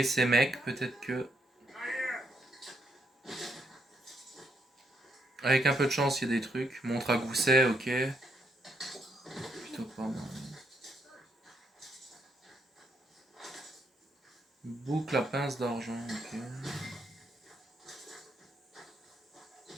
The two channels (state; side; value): normal; both; correlation 0.76